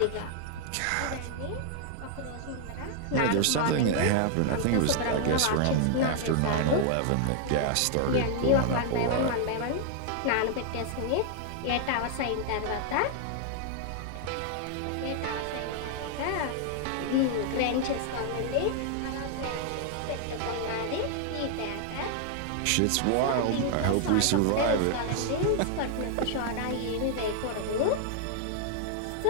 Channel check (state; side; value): different; both; correlation 0.00